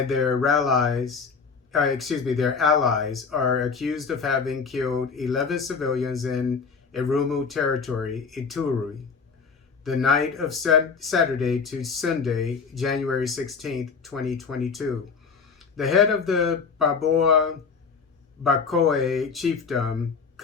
their allies are accused of having killed 11 civilians in Irumu Territory, Ituri, the night of Saturday to Sunday, January 16th, 2022. The head of the Baboa Bakoe chiefdom,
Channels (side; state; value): right; quieter; 5.4 dB